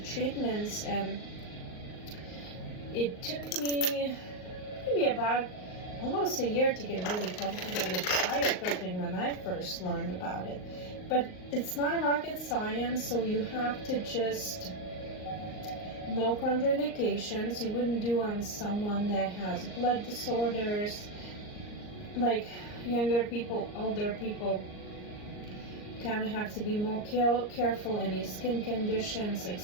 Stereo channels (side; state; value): right; late; 38 ms